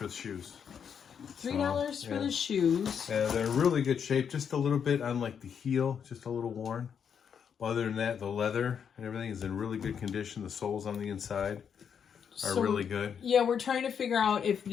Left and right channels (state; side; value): quieter; right; 7.5 dB